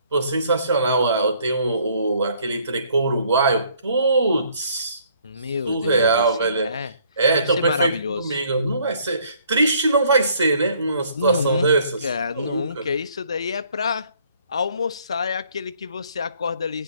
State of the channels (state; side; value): inverted; both; correlation -0.62